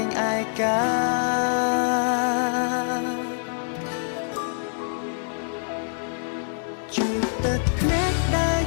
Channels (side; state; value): right; silent; digital silence